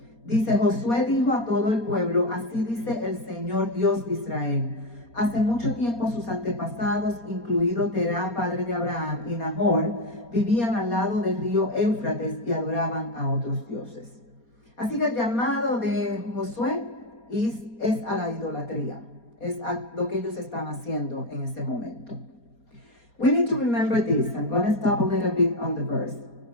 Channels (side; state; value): right; late; 4.2 ms